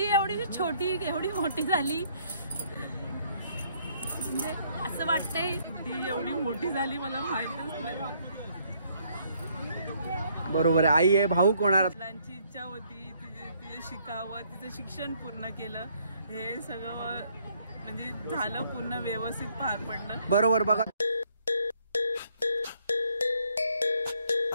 एवढी छोटी एवढी मोठी झाली म्हणजे असं वाटतंय ती एवढी मोठी झाली मला माहितच नाही। बरोबर आहे आई आहे भाऊ कोणाला मुलांची इच्छा होती तिचे शिकावं तिचं शिक्षण पूर्ण केलं हे सगळं म्हणजे झालं पूर्ण व्यवस्थित पार पडलं। बरोबर बघा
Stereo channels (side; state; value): both; inverted; correlation -0.67